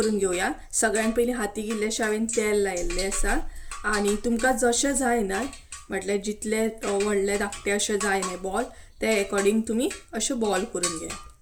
घेवया. सगळ्यान पयलीं हातीक इल्लेशें हांवें तेल लायिल्लें आसा. आणि तुमकां जशें जाय न्हय, म्हटल्यार जितले व्हडले धाकटे अशें जाय न्हय बॉल, ते अकॉर्डिंग तुमी अशे बॉल करून घे.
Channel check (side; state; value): both; identical; correlation 1.00